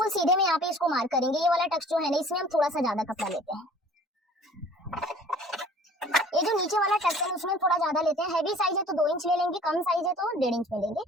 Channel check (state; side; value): normal; both; correlation 0.49